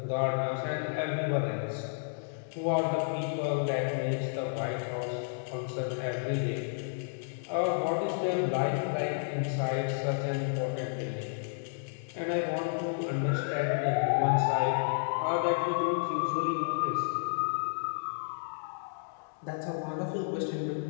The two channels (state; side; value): silent; right; digital silence